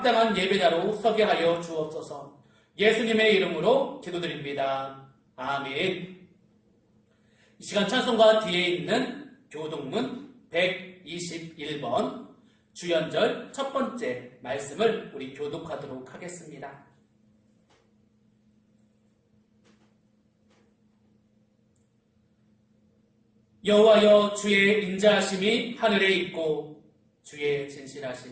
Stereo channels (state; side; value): identical; both; correlation 1.00